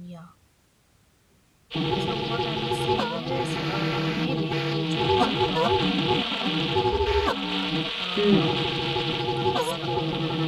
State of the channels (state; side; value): identical; both; correlation 1.00